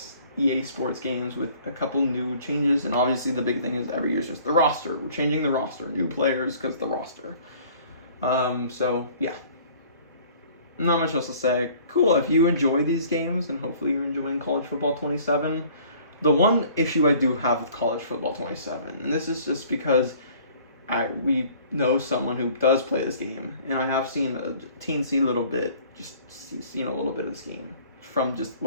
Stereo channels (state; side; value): inverted; both; correlation -0.53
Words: EA Sports games with a couple new changes, and obviously the big thing is every year is just the roster. We're changing the roster, new players because the roster. So yeah, not much else to say. Cool, if you enjoy these games, and hopefully you're enjoying College Football 27. The one issue I do have with College Football 27, and this is just because we know someone who does play this game, and I have seen a teensy little bit, seen a little bit of this game from just